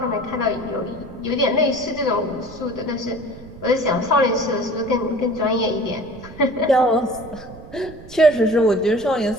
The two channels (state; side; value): noise; right; rumble, 17 dB below the sound